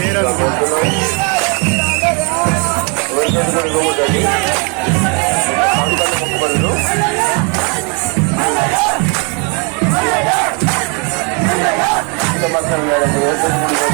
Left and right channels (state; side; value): quieter; left; 34.9 dB